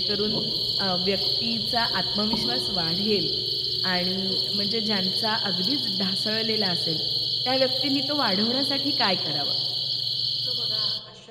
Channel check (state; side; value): identical; both; correlation 1.00